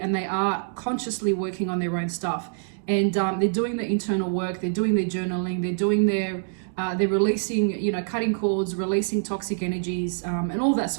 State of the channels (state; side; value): silent; left; digital silence